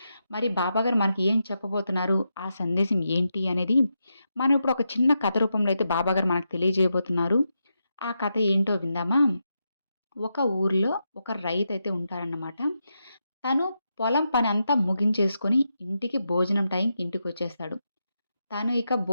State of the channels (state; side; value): inverted; both; correlation -0.86